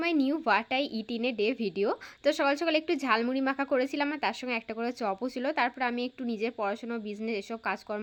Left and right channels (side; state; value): both; identical; correlation 1.00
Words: my new what I it in a day video. তো সকাল সকাল একটু ঝালমুড়ি মাখা করেছিলাম আর তার সঙ্গে একটা করে চপও ছিল। তারপর আমি একটু নিজের পড়াশোনা, বিজনেস এসব